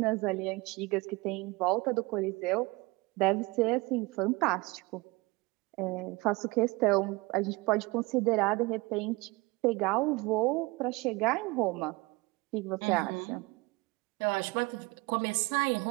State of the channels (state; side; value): quieter; left; 24.1 dB